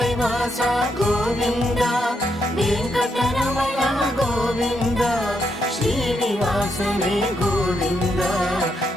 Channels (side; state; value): both; normal; correlation 0.79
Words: வாசா கோவிந்தா, வெங்கடரமணா கோவிந்தா, ஸ்ரீனிவாசனே கோவிந்தா,